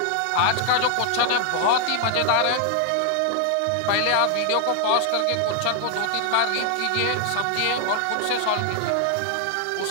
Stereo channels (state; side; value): different; both; correlation 0.00